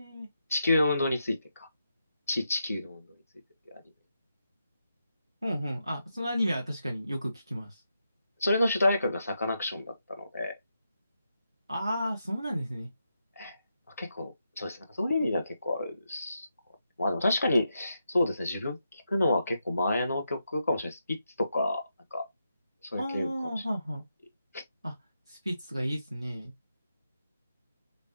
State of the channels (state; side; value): inverted; both; correlation -0.85